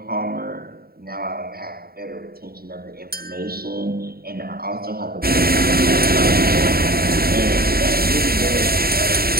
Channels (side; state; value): left; late; 0.44 ms